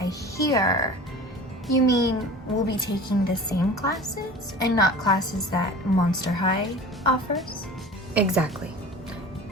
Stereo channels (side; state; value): both; normal; correlation 0.39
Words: here, you mean we'll be taking the same classes and not classes that Monster High offers? Exactly.